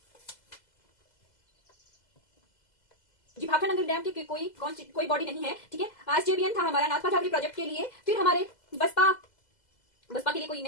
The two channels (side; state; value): right; late; 2.0 ms